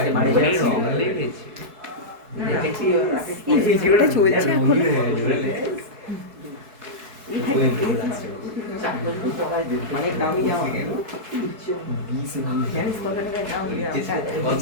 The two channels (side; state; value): left; late; 4.6 ms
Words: রং লেগেছে দেখেছি এই ভিডিওটা চলছে এখন অনেক দামি জামা জানিস কত টাকার দাম